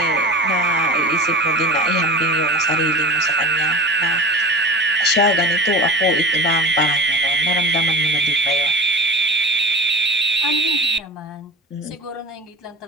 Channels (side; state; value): both; normal; correlation 0.31